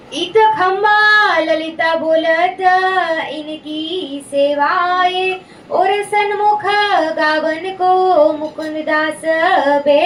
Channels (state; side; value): identical; both; correlation 1.00